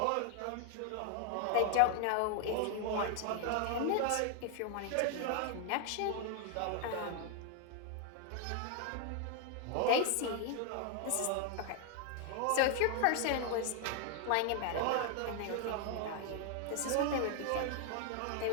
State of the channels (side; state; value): both; different; correlation 0.00